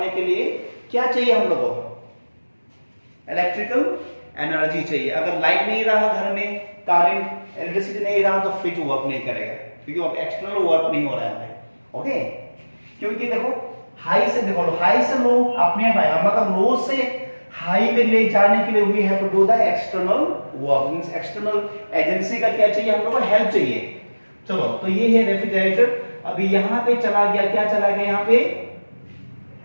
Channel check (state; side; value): inverted; both; correlation -1.00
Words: के लिए क्या चाहिए हम लोगों को, इलेक्ट्रिकल एनर्जी चाहिए। अगर लाइट नहीं रहा घर में, करंट इलेक्ट्रिसिटी नहीं रहा, तो फ्रिज वर्क नहीं करेगा, क्योंकि एक्सटर्नल वर्क नहीं हो रहा है, ओके। क्योंकि देखो हाई से देखो, हाई से लो अपने आएगा, मतलब लो से हाई में ले जाने के लिए we have to do the external work, means external agency का क्या चाहिए, हम लोगों को हेल्प चाहिए। चलो तो ये है रेफ्रिजरेटर। अभी यहाँ पे चला गया, क्या चला गया यहाँ पे,